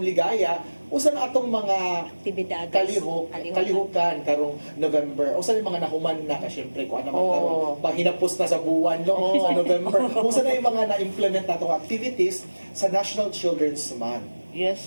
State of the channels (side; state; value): both; inverted; correlation -1.00